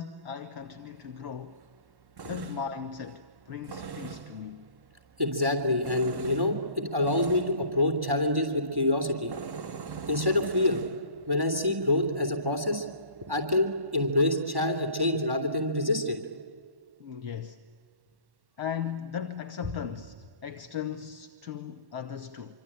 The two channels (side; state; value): left; late; 1.1 ms